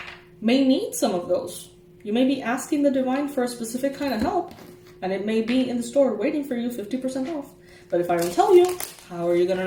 may need some of those. You may be asking the divine for a specific kind of help, and it may be in the store waiting for you 50% off. But if I don't tell you, how are you gonna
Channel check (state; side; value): identical; both; correlation 1.00